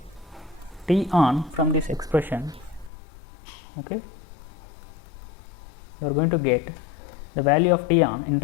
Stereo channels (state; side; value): drops out; right; at 2.9 s